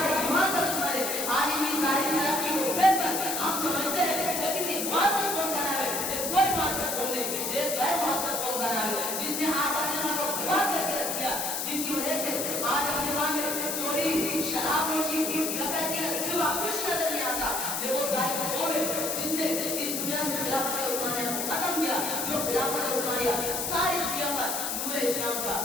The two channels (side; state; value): left; noise; hiss, 1 dB below the sound